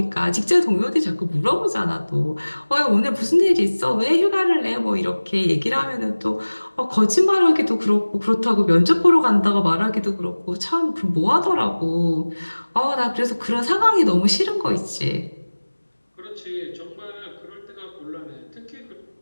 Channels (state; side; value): inverted; both; correlation -1.00